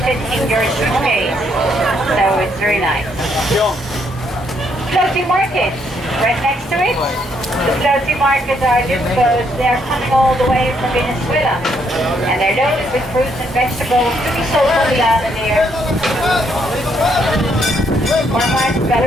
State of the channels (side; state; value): both; normal; correlation 0.72